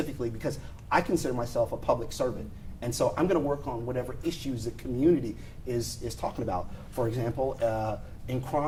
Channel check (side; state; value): both; identical; correlation 1.00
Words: because I consider myself a public servant. And so I'm going to work on whatever issues the community is talking about. For example, in